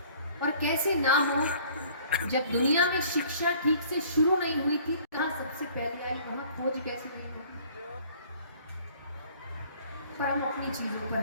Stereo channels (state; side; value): inverted; both; correlation -0.53